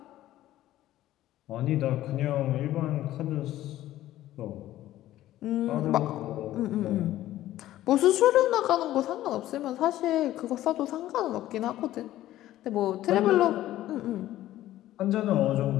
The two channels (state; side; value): quieter; right; 14.2 dB